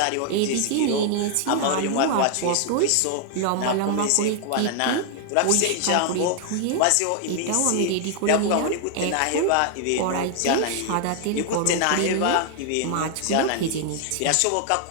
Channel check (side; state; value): both; different; correlation 0.00